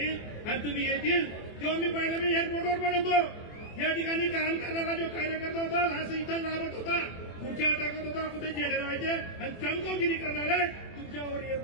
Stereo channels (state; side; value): late; right; 24 ms